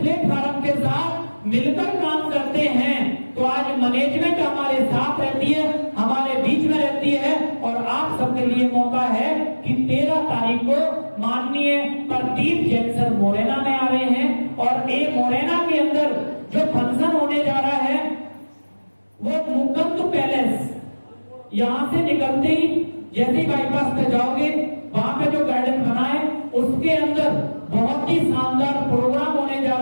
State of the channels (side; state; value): both; inverted; correlation -1.00